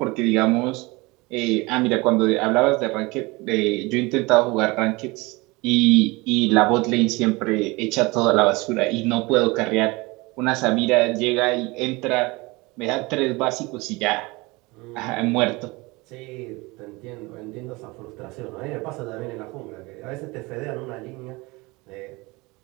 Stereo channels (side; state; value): left; quieter; 24.0 dB